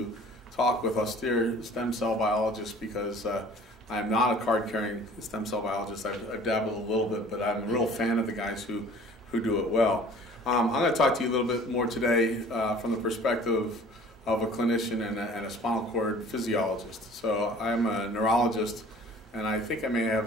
talk with austere stem cell biologists, because I am not a card-carrying stem cell biologist. I've dabbled a little bit, but I'm a real fan of the guys who do it well. I'm going to talk to you a little bit more today from the perspective of a clinician and a spinal cord physiologist. So I'm a neurologist, and I think I may have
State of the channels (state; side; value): normal; both; correlation 0.49